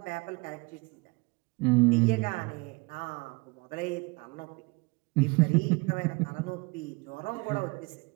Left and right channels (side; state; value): left; quieter; 26.7 dB